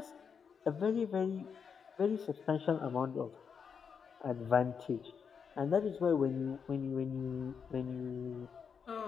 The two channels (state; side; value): quieter; right; 6.5 dB